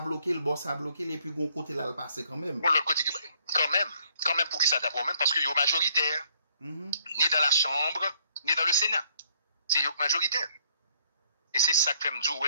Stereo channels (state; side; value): inverted; both; correlation -0.66